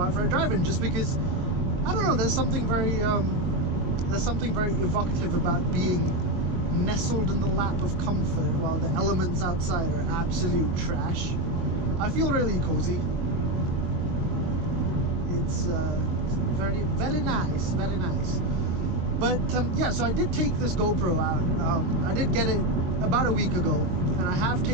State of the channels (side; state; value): left; late; 22 ms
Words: for a drive in, just because, I don't know, there's something very evocative about being nestled in the lap of comfort while the elements outside are absolute trash. I feel really cozy. It's very, very nice, very nice. But yeah, so I did take this GoPro out. I did get it about a week ago, and I have